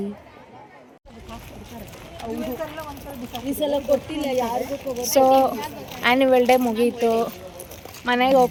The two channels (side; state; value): both; identical; correlation 1.00